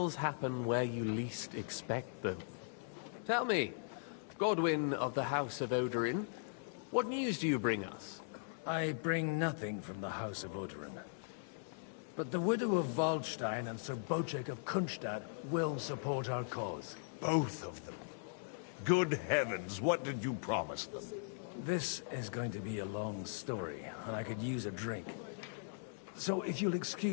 happen where you least expect them. Tell me, Godwin of the House of Odorin, what news do you bring us? I bring nothing from the House of Odorin. But the widow of Waldstein and Sir Bocek of Kunstadt will support our cause. Both of them. Good heavens, what did you promise them? This is going to be a long story, and I could use a drink. So if you'll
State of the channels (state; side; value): silent; right; digital silence